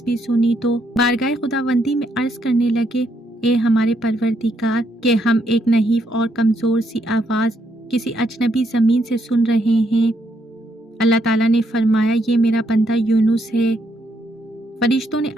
سنی تو بارگاہ خداوندی میں عرض کرنے لگے، اے ہمارے پروردگار، کہ ہم ایک نحیف اور کمزور سی آواز کسی اجنبی زمین سے سن رہے ہیں۔ اللہ تعالیٰ نے فرمایا، یہ میرا بندہ یونس ہے۔ فرشتوں نے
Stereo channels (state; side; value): normal; both; correlation 0.75